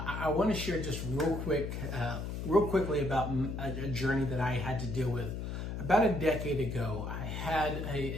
want to share just real quickly about a journey that I had to deal with. About a decade ago, I had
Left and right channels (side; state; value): left; noise; hum, 5 dB below the sound